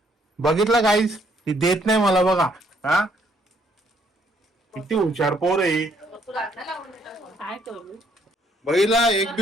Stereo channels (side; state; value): both; normal; correlation 0.68